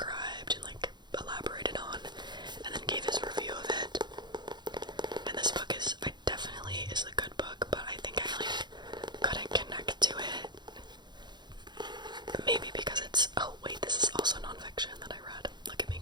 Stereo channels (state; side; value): late; left; 0.21 ms